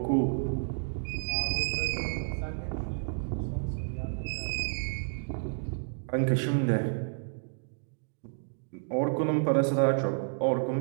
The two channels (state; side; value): silent; left; digital silence